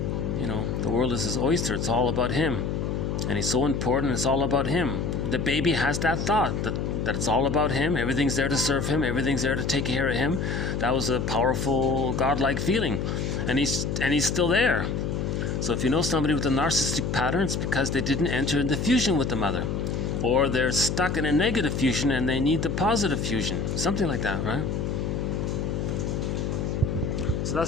the world is his oyster. It's all about him. And he's so important, it's all about him. The baby has that thought that it's all about him. Everything's there to serve him. Everything's there to take care of him. That was a powerful, godlike feeling. And he's still there. So if you know somebody with a narcissistic pattern, it's because they didn't enter into fusion with the mother. Or they're stuck in a negative fusion and they need the positive fusion. Something like that, right? So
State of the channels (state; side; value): noise; left; hum, 1 dB below the sound